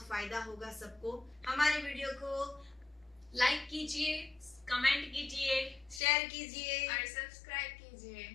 फायदा होगा सबको। हमारे वीडियो को लाइक कीजिए, कमेंट कीजिए, शेयर कीजिए और सब्सक्राइब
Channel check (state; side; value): drops out; right; at 6.0 s